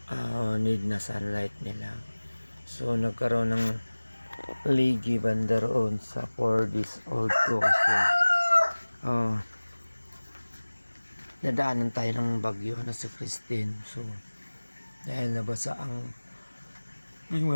need na sunlight nila. So nagkaroon ng ligi banda roon sa 4 days old ko kasi nadaanan tayo ng bagyo na sa Christine. So dahil nabasa ang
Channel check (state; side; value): inverted; both; correlation -1.00